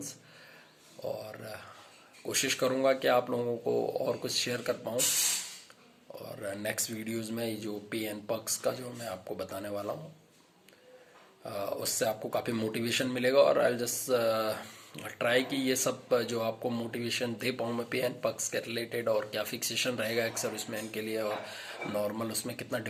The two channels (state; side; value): identical; both; correlation 1.00